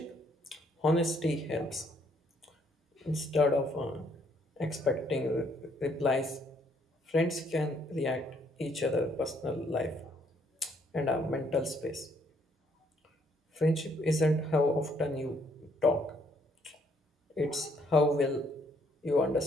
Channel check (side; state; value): both; normal; correlation 0.68